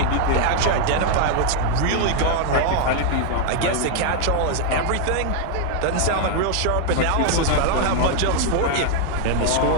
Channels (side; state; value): both; different; correlation 0.00